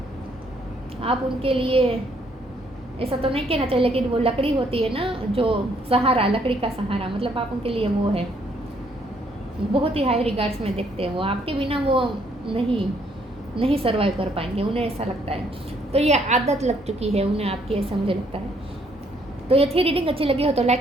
आप उनके लिए ऐसा तो नहीं कहना चाहिए, लेकिन वो लकड़ी होती है ना, जो सहारा, लकड़ी का सहारा, मतलब आप उनके लिए वो है। बहुत ही हाई रिगार्ड्स में देखते हैं वो, आपके बिना वो नहीं सर्वाइव कर पाएंगे, उन्हें ऐसा लगता है। तो ये आदत लग चुकी है उन्हें आपकी, ऐसा मुझे लगता है। तो ये थी रीडिंग अच्छी लगी हो तो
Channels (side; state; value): both; normal; correlation 0.68